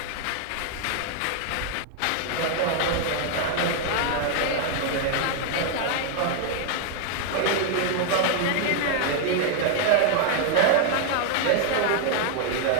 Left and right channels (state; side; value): different; both; correlation 0.00